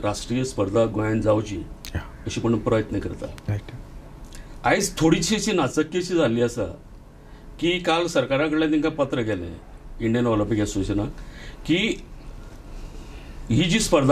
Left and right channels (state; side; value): identical; both; correlation 1.00